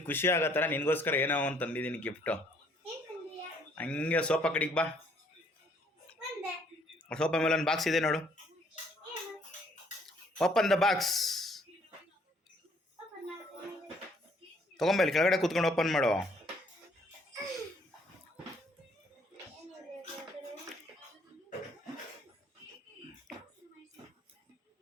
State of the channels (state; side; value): normal; both; correlation 0.64